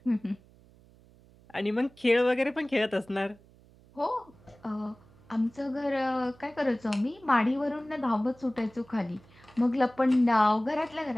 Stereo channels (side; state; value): right; noise; hum, 27 dB below the sound